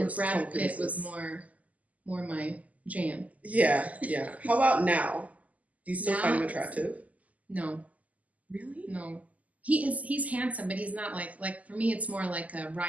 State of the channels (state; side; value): late; left; 0.075 ms